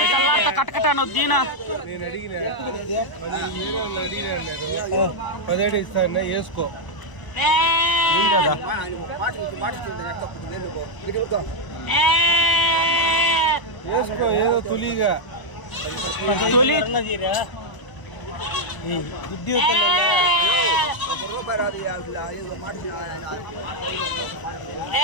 కట్టకట్టాను దీనా నేను అడిగిన 17 ఇస్తాను వేసుకో. వేసుకో ఏదో తొలిగా తొలి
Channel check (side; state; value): right; late; 1.0 ms